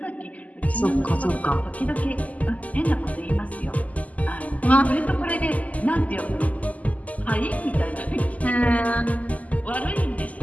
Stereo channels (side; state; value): right; late; 0.074 ms